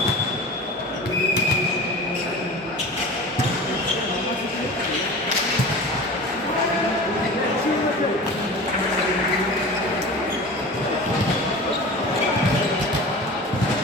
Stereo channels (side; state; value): both; normal; correlation 0.35